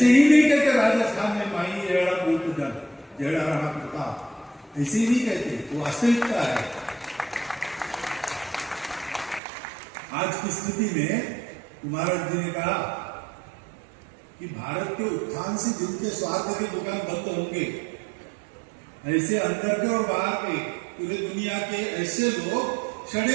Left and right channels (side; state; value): left; drops out; at 9.4 s